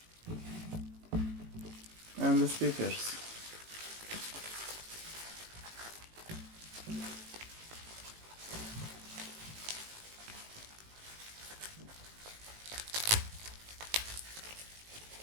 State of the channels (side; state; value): left; late; 18 ms